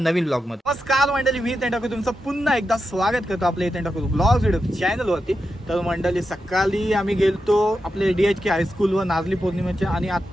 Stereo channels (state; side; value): normal; both; correlation 0.88